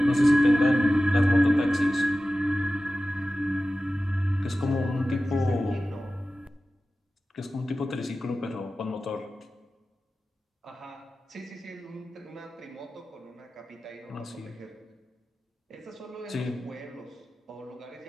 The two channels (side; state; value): both; normal; correlation 0.95